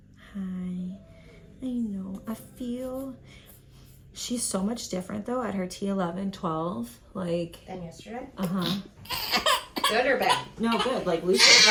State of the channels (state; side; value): identical; both; correlation 1.00